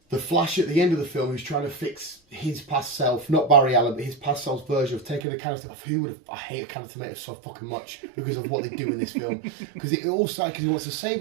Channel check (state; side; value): drops out; left; at 5.2 s